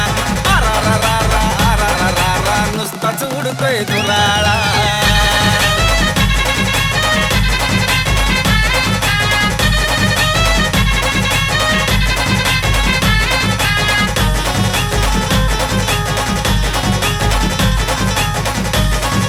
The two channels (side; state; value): both; identical; correlation 1.00